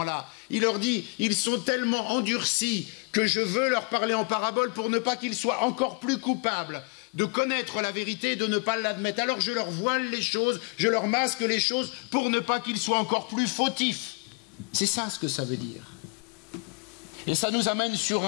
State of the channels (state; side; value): quieter; right; 32.8 dB